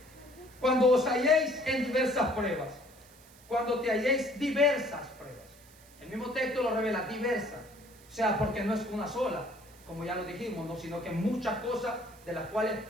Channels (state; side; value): noise; right; hiss, 25 dB below the sound